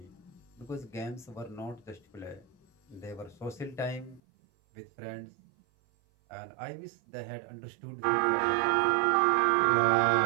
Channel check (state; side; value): drops out; left; at 4.2 s